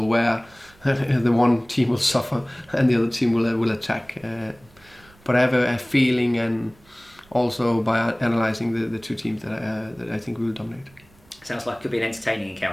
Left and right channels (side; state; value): right; noise; rumble, 28 dB below the sound